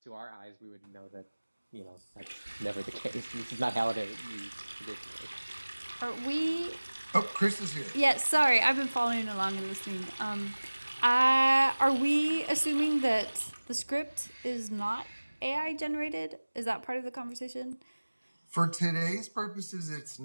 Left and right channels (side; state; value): both; inverted; correlation -1.00